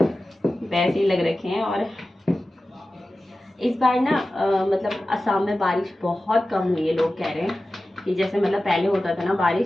वैसे ही लग रखे हैं। और इस बार ना मतलब असम में बारिश बहुत कम हुई है। लोग कह रहे हैं कि जैसे मतलब पहले होता था ना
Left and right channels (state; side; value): normal; both; correlation 0.95